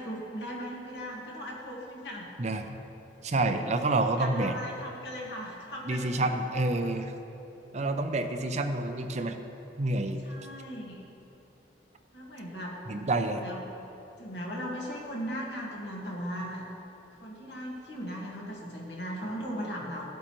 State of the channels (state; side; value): normal; both; correlation 0.38